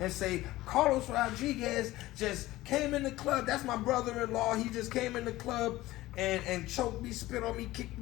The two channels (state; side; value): quieter; right; 17.3 dB